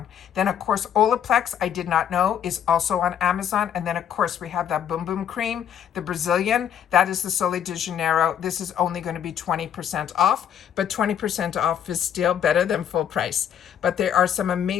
Then of course, Olaplex, I did not know, is also on Amazon. And then of course, we have that Boom Boom Cream, the Brazilian, that is the Sol de Janeiro. This is only going to be 20% off, but 20% off is still better than full price. But there are some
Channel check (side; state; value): right; quieter; 9.1 dB